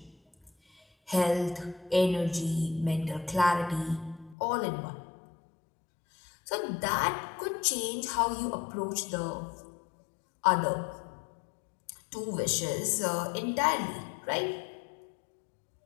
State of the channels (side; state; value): right; drops out; at 4.4 s